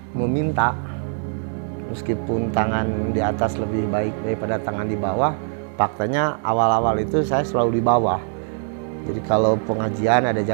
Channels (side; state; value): left; silent; digital silence